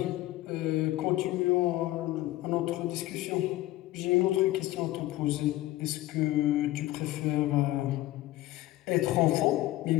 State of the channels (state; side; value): quieter; right; 16.3 dB